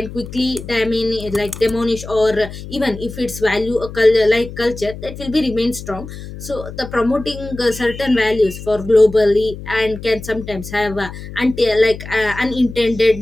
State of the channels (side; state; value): left; noise; hum, 12 dB below the sound